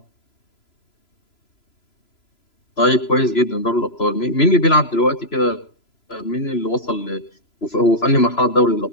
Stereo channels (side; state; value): right; late; 3.0 ms